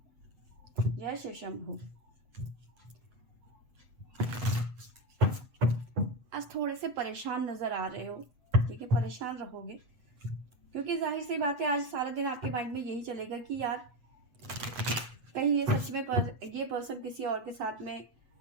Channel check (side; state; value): left; late; 8.0 ms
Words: जय शिव शंभू। आज थोड़े से परेशान नजर आ रहे हो। ठीक है, परेशान रहोगे क्योंकि जाहिर सी बात है आज सारा दिन आपके माइंड में यही चलेगा कि यार कहीं ये सच में ये पर्सन किसी और के साथ में